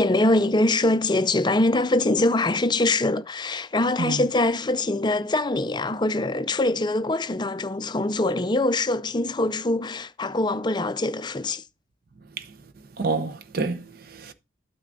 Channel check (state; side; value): normal; both; correlation 0.52